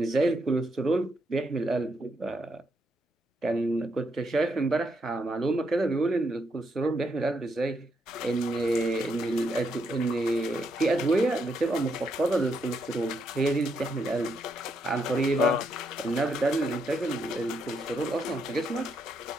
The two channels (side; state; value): both; normal; correlation 0.78